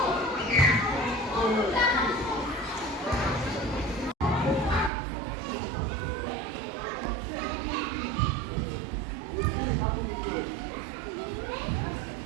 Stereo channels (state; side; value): drops out; left; at 4.9 s